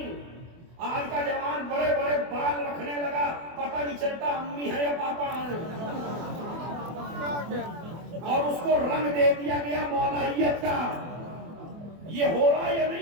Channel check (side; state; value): left; late; 24 ms